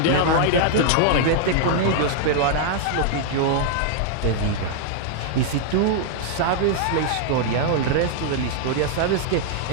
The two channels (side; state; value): both; different; correlation -0.01